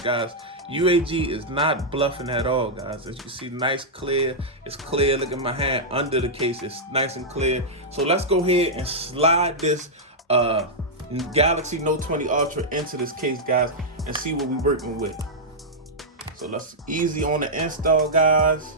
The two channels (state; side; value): normal; both; correlation -0.08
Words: guys, UAG is not bluffing at all, guys. As you can see, nice clear. It's clear. Look at my hand under the case. It's nice and clear. So let's go ahead and slide this Galaxy Note 20 Ultra into this case, guys, and see what we're working with. So let's easy on the install, guys.